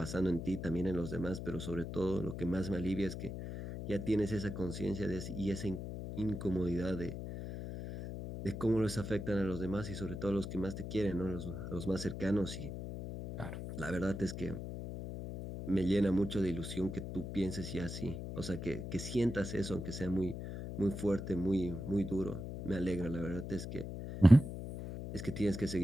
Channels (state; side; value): noise; left; hum, 7 dB below the sound